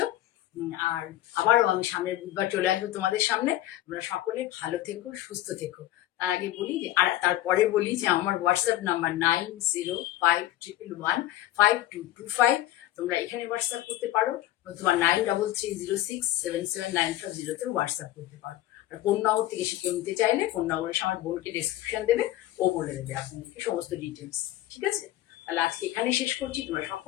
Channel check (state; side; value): quieter; right; 14.6 dB